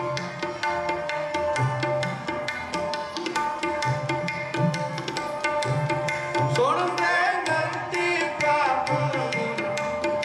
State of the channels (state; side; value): identical; both; correlation 1.00